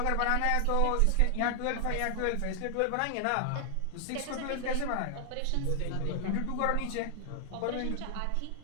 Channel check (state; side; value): different; both; correlation 0.00